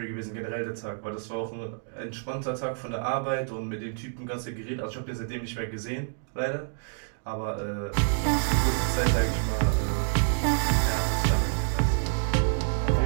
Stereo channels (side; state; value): left; silent; digital silence